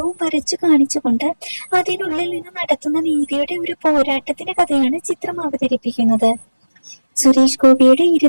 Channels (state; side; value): inverted; both; correlation -1.00